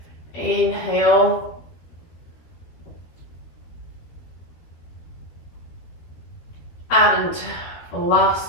Inhale. And the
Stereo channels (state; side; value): late; right; 13 ms